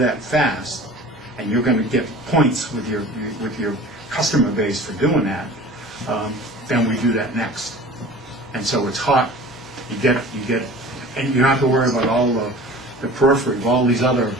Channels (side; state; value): both; normal; correlation 0.42